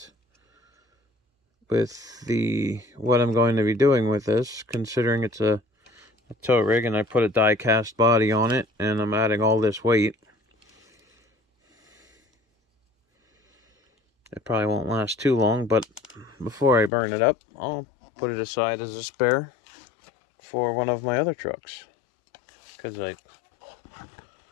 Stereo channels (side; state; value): right; drops out; at 16.9 s